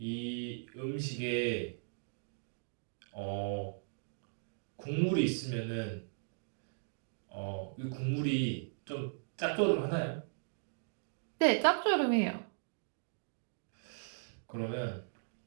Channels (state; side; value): silent; left; digital silence